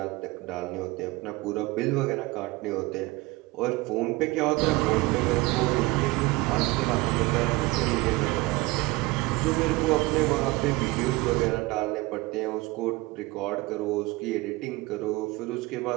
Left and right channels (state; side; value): quieter; left; 21.7 dB